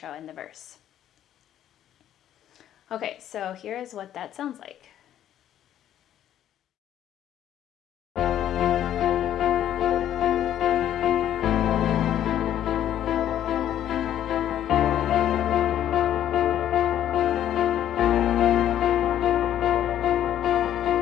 and the verse. Okay, so here's what that sounds like.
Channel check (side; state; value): right; quieter; 11.2 dB